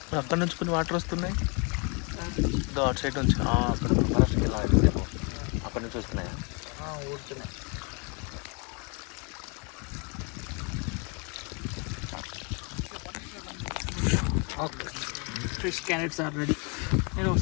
అక్కడ నుంచి కొన్ని వాటర్ వస్తున్నాయి, అటు సైడ్ నుంచి అక్కడ ఫారెస్ట్కి వెళ్ళాలి, అక్కడ నుంచి వస్తున్నాయా? ఊరుతున్నాయి. Okay, fresh carrots are ready. నేను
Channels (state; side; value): quieter; right; 33.6 dB